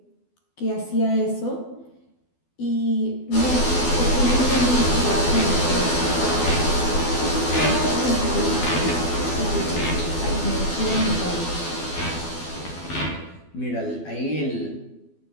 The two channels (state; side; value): late; right; 12 ms